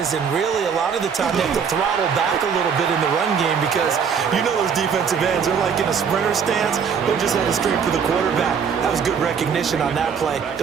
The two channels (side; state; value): left; quieter; 6.7 dB